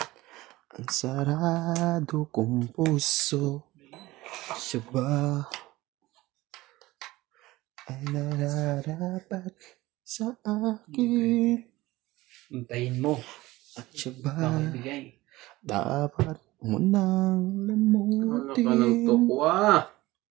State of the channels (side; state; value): left; quieter; 18.8 dB